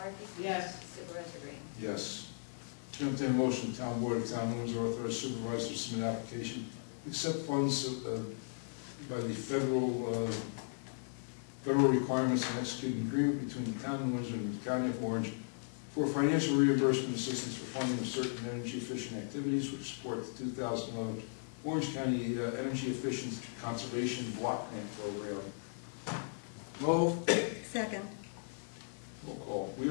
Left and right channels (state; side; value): silent; right; 53 dB below the other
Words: Yes. Supervisor Green? Yes. Chair will entertain a motion, the town board of the town of Windsor authorize supervisor to submit application, accept funds by the federal requirements and execute an agreement between the town of Windsor and the county of Orange for financial reimbursement assistance for funding of certain energy efficient activities which support the 2011 Orange County Energy Efficient Conservation Block Grant Program. Move. Second. Roll call. We